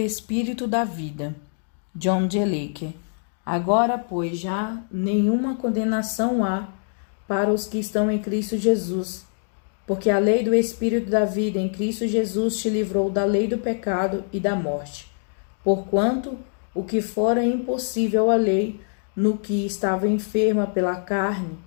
da vida. John G. Lake. Agora, pois, já nenhuma condenação há para os que estão em Cristo Jesus, porque a lei do espírito da vida em Cristo Jesus te livrou da lei do pecado e da morte. Porquanto o que fora impossível à lei, no que estava enferma pela carne,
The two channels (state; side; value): silent; right; 56 dB below the other